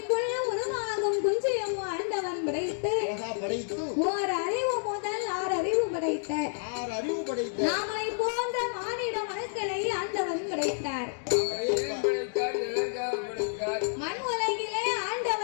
உருவாகும் குஞ்சையும் ஆண்டவன் படைத்து ஓர் அறிவு முதல் 6 அறிவு படைத்த நாமளை போன்ற மானிட மனுக்களை ஆண்டவன் படைத்தார். மண் உலகிலே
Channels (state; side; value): silent; right; digital silence